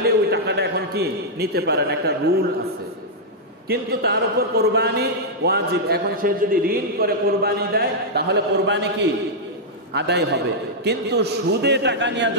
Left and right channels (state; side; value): normal; both; correlation -0.06